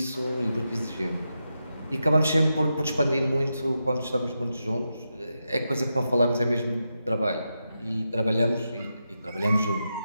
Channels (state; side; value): inverted; both; correlation -0.87